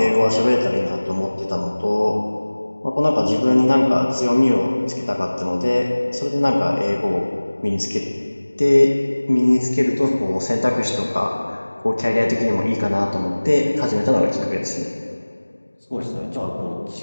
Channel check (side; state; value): both; inverted; correlation -1.00